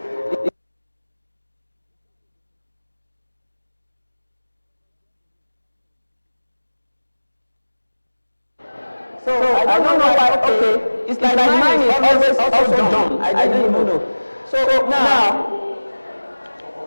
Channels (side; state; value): both; inverted; correlation -1.00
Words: So I don't know why. Okay, it's like mine is always also done. I didn't know. So now,